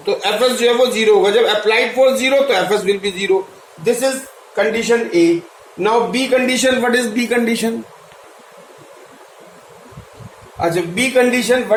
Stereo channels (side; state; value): both; identical; correlation 1.00